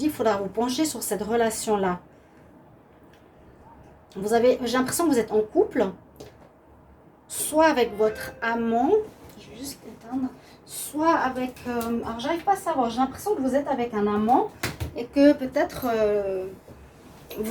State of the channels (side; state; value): both; identical; correlation 1.00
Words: qu'il faudra vous pencher sur cette relation-là. J'ai l'impression que vous êtes en couple, soit avec votre amant, je vais juste éteindre, soit avec... alors, j'arrive pas à savoir, j'ai l'impression que vous êtes avec un amant et que peut-être